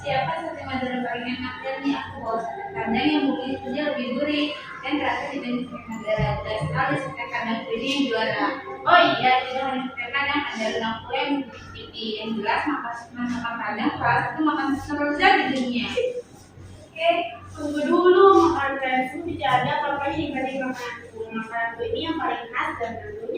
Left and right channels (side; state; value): both; identical; correlation 1.00